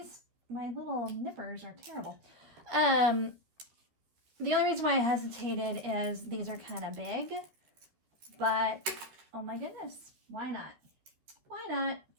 my little nippers are terrible. The only reason why I hesitated is these are kind of big, but oh my goodness, why not? Why not?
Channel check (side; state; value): left; late; 13 ms